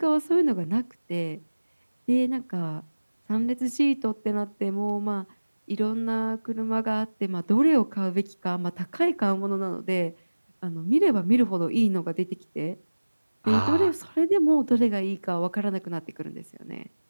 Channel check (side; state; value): both; inverted; correlation -1.00